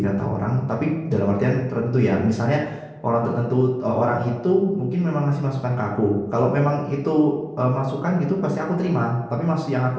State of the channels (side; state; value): both; identical; correlation 1.00